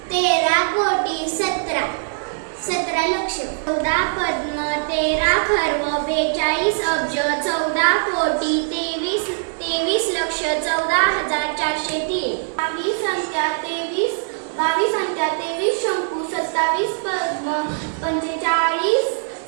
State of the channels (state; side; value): silent; left; 64 dB below the other